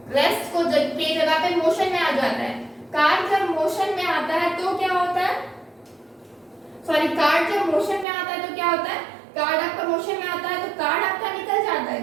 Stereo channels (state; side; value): drops out; left; at 8.1 s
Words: रेस्ट को के जगह पे मोशन में आ जाता है। कार्ड जब मोशन में आता है तो क्या होता है, कार्ड जब मोशन में आता है तो क्या होता है, कार्ड आपका मोशन में आता है तो कार्ड आपका निकल जाता है,